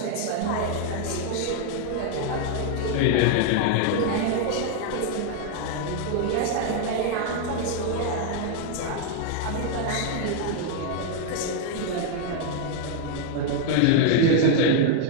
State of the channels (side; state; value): both; different; correlation 0.00